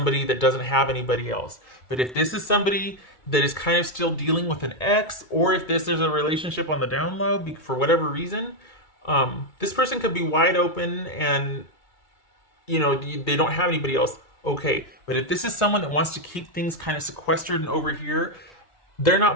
that doesn't have anybody else, but if this is somebody that is kind of still dealing with an ex, or if this is a relationship on the down low for whatever reason, this person could be wide open and, you know, they don't have anybody else. Okay, but if this is someone that wants to keep things kind of sequestered and over here, they're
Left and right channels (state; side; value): late; right; 2.3 ms